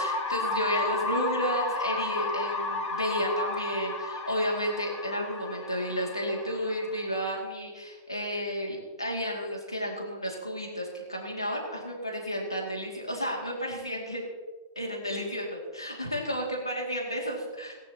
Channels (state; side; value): inverted; both; correlation -0.34